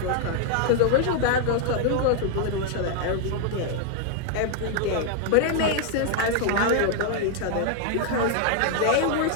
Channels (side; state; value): both; different; correlation 0.00